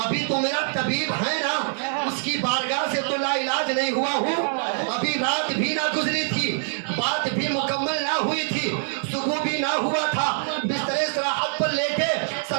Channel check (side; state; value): left; silent; digital silence